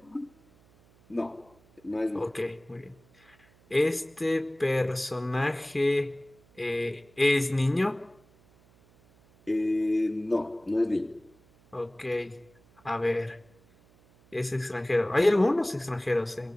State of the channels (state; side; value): noise; right; hum, 30 dB below the sound